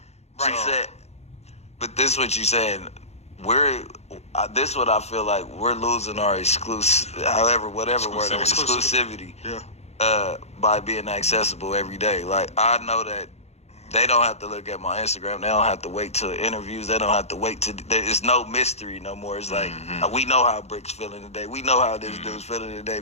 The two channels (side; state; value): right; late; 0.31 ms